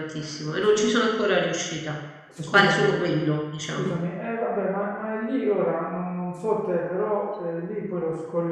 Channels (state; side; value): identical; both; correlation 1.00